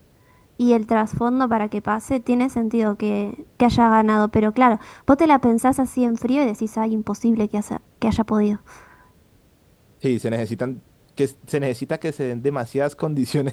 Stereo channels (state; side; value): identical; both; correlation 1.00